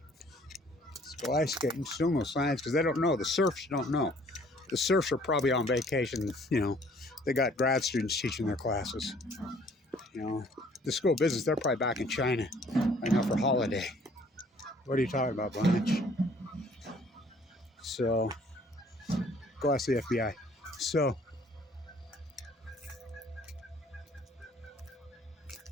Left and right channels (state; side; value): normal; both; correlation 0.58